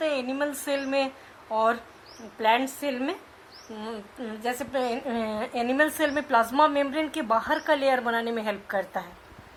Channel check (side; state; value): both; identical; correlation 1.00